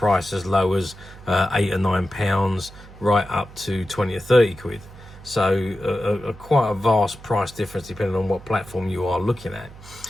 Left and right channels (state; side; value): noise; right; hum, 18 dB below the sound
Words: as low as £8 or £9 right up to 20 or 30 quid. So quite a vast price difference depending on what platform you are looking at.